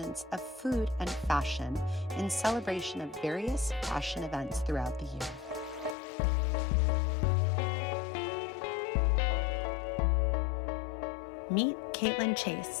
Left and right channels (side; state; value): right; drops out; at 6.0 s